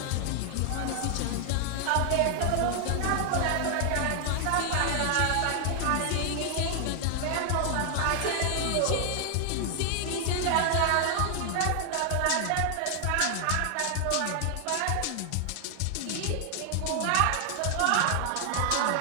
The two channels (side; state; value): both; different; correlation 0.00